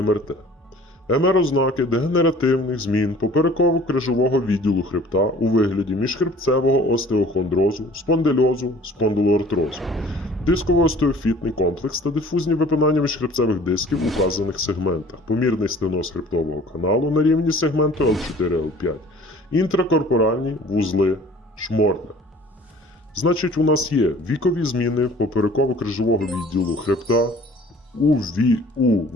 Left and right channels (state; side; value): normal; both; correlation 0.50